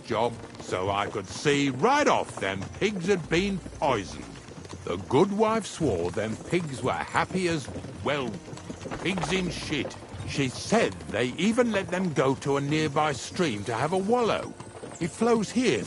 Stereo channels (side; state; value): both; identical; correlation 1.00